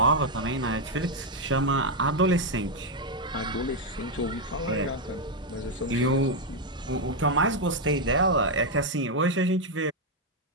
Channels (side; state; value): both; normal; correlation 0.02